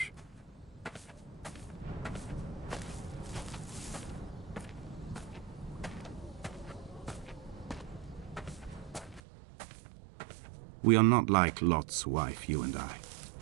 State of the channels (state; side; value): drops out; left; at 9.2 s